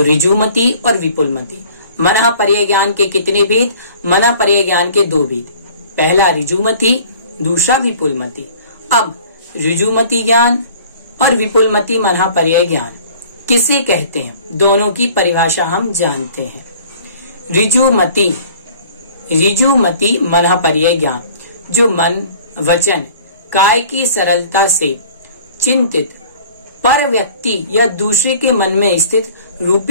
ऋजु मति और विपुल मति। मन पर्याय ज्ञान के कितने भेद? मन पर्याय ज्ञान के 2 भेद, पहला ऋजु मति, दूसरा विपुल मति। अब ऋजु मति ज्ञान और विपुल मति मन पर्याय ज्ञान किसे कहते हैं, दोनों की परिभाषा हम जानते हैं। ऋजु मति मन पर्याय ज्ञान, जो मन, वचन, काय की सरलता से चिंतित पर व्यक्ति या दूसरे के मन में स्थित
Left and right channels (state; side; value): inverted; both; correlation -0.49